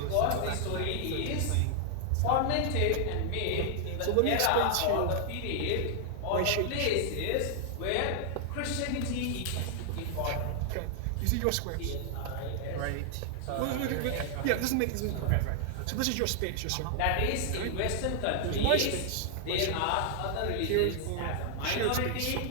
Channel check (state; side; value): different; both; correlation 0.00